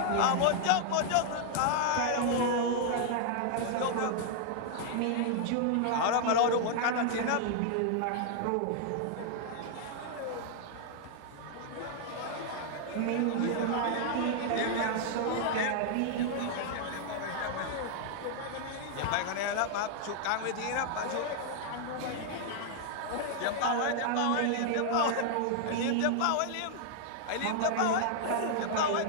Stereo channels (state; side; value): different; both; correlation 0.00